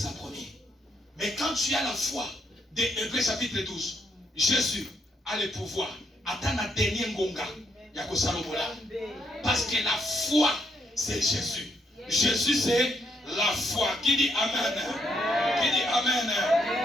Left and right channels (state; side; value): normal; both; correlation 0.76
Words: promis. Mais quand tu as la foi des Hébreux chapitre 12, Jésus a le pouvoir. Attends la dernière ngonga. Parce que la foi, c'est Jésus. Jésus, c'est la foi. Qui dit Amen? Qui dit Amen?